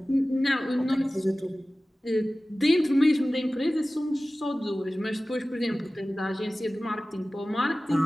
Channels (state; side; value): normal; both; correlation 0.97